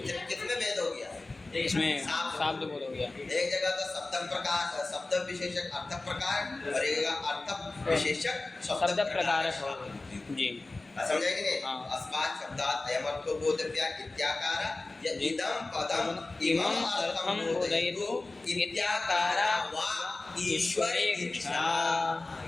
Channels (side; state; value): right; quieter; 3.2 dB